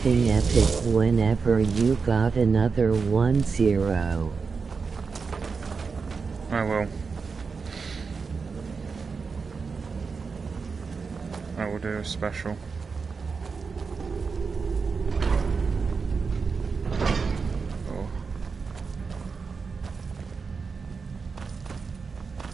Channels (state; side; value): quieter; left; 5.0 dB